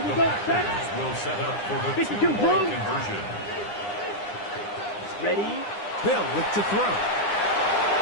we go, set. Will set up for the 52 2-point conversion. Ready. They'll look to throw.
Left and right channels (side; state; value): right; late; 9.8 ms